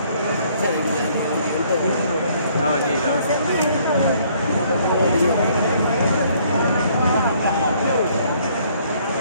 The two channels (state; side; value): inverted; both; correlation -0.63